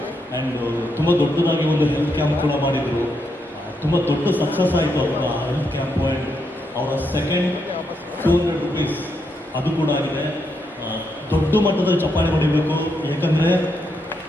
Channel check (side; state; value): both; normal; correlation 0.80